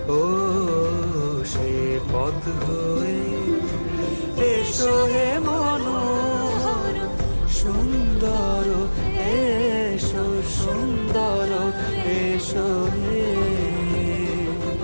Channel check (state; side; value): inverted; both; correlation -1.00